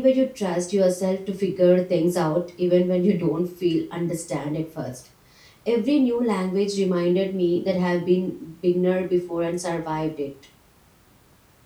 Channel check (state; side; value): identical; both; correlation 1.00